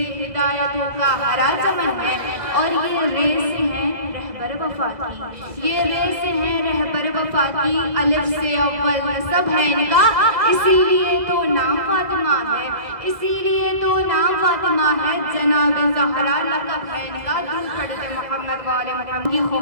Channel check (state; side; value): late; left; 2.1 ms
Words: हिदायतों का हरा चमन है, और ये रे से है रहबर वफा की, ये रे से है रहबर वफा की, अलिफ से अव्वल नसब है इनका, इसीलिए तो नाम फातिमा है, इसीलिए तो नाम फातिमा है, जनाब ज़हरा लक़ब है इनका। दूर पढ़ते मोहम्मद वाले मोहम्मद की